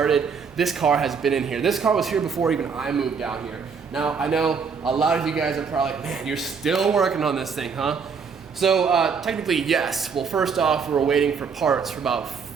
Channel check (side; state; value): left; quieter; 5.8 dB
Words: this car has been in here. This car was here before even I moved down here. Now, I know a lot of you guys are probably like, man, you're still working on this thing, huh? So technically, yes. Well, first off, we were waiting for parts for about